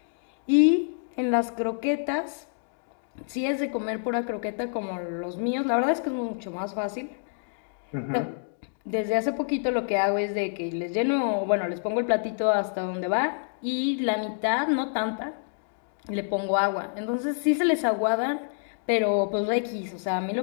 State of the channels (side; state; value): right; silent; digital silence